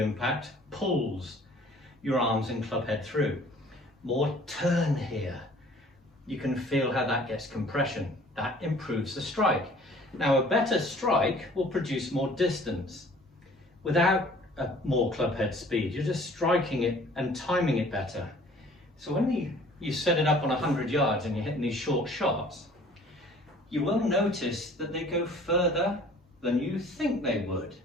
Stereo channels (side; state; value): both; normal; correlation 0.52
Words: pulls your arms and club head through. More turn here. You can feel how that gets compression. That improves the strike. Now a better strike will produce more distance without more club head speed. You're just striking it and timing it better. So when you set it up on 100 yards and you're hitting these short shots, you will notice that they go further than you think they would.